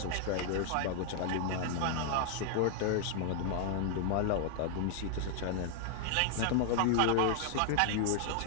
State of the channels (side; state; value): both; different; correlation 0.00